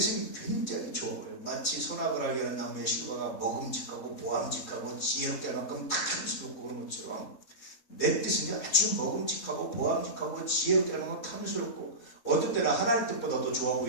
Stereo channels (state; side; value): late; right; 4.2 ms